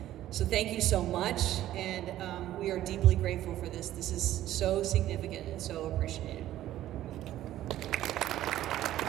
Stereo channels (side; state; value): left; quieter; 13.5 dB